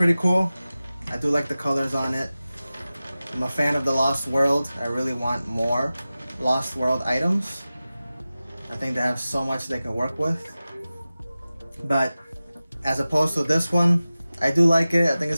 cool. I do like the colors on it. I'm a fan of the Lost World. I really want more Lost World items. I think they have so much they can work with. But as opposed to this one, I do like it. I think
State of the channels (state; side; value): inverted; both; correlation -0.96